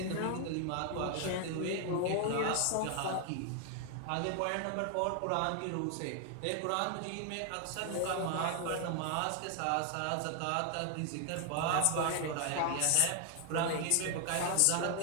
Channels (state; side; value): different; both; correlation 0.00